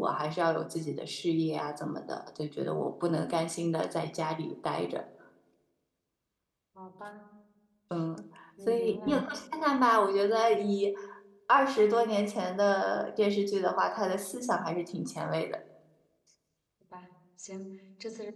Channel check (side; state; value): both; identical; correlation 1.00